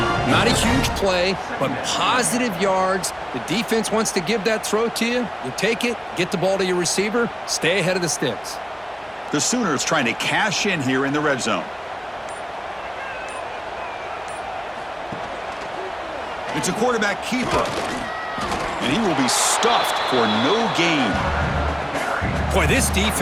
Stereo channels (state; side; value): identical; both; correlation 1.00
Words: Not a huge play, but positive yards. The defense wants to give that throw to you. You take it, get the ball to your receiver, stay ahead of the sticks. The Sooners trying to cash in here in the red zone. It's a quarterback keeper. And he will be stuffed for no gain. Boy, this